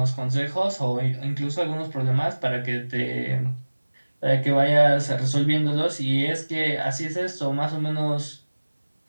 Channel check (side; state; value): both; inverted; correlation -1.00